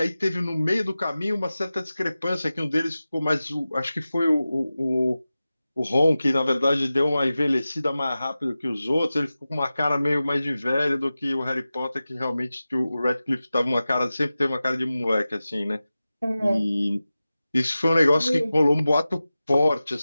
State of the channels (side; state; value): both; inverted; correlation -0.95